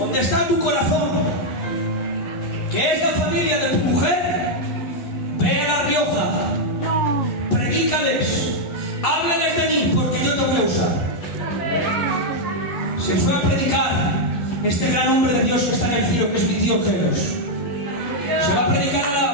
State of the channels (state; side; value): late; right; 11 ms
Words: está tu corazón? Que es la familia de tu mujer. Ve a La Rioja, predícales, háblales de mí, porque yo te voy a usar. Se fue a predicar este gran hombre de Dios que está en el cielo, que es mi tío Geros. Se va a predicar a